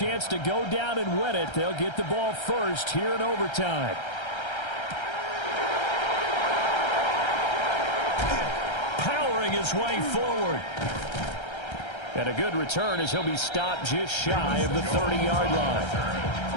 to go down and win it. They'll get the ball first here in overtime. Powering his way forward. And a good return as he'll be stopped just shy of the 30-yard line.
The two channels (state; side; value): late; right; 1.3 ms